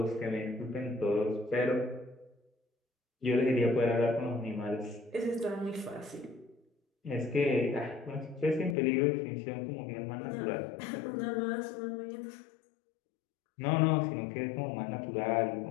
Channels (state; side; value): drops out; right; at 8.8 s